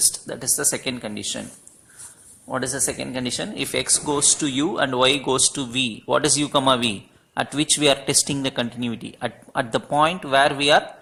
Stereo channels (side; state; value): both; identical; correlation 1.00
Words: That is the second condition. What is the second condition? If x goes to u and y goes to v, what is u comma v? At which we are testing the continuity. At the point where we are